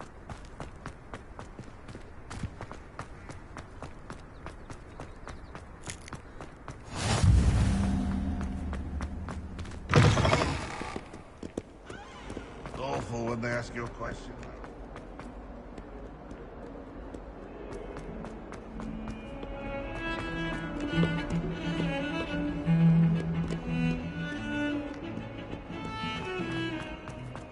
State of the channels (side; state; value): both; identical; correlation 1.00